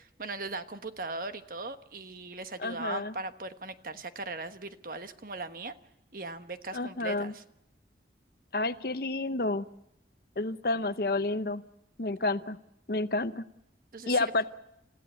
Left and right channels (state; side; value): normal; both; correlation -0.12